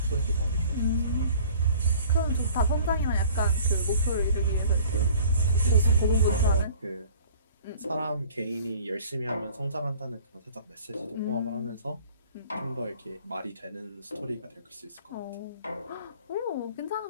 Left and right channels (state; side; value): inverted; both; correlation -0.49